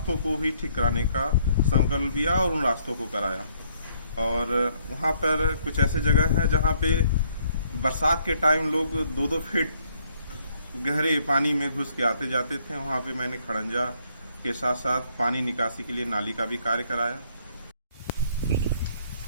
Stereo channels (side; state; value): both; inverted; correlation -0.67